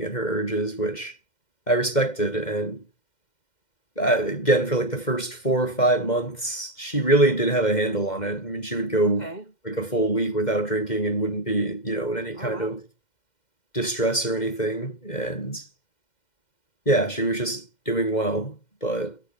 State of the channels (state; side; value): late; right; 2.1 ms